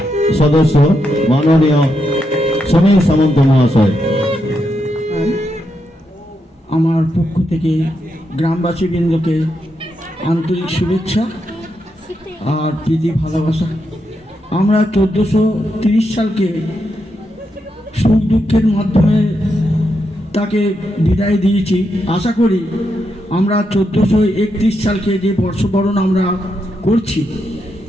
সদস্য মাননীয় সমীর সামন্ত মহাশয়, আমার পক্ষ থেকে গ্রামবাসীবৃন্দকে আন্তরিক শুভেচ্ছা আর প্রীতি ভালোবাসা। আমরা 1430 সালকে সুখ দুঃখের মাধ্যমে তাকে বিদায় দিয়েছি। আশা করি আমরা 1431 সালকে যে বর্ষবরণ আমরা করছি,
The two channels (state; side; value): normal; both; correlation 0.82